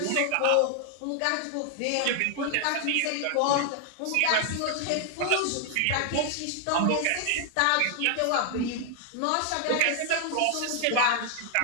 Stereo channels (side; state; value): both; different; correlation 0.00